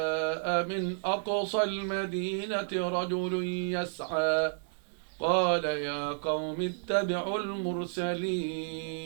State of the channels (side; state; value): left; silent; digital silence